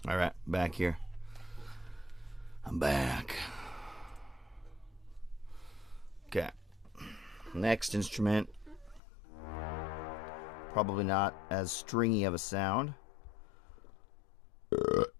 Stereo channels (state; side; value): drops out; right; at 9.0 s